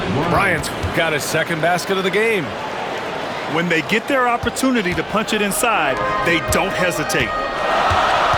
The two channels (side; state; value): both; identical; correlation 1.00